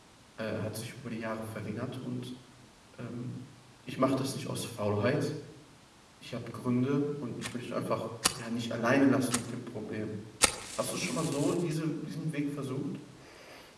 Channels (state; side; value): identical; both; correlation 1.00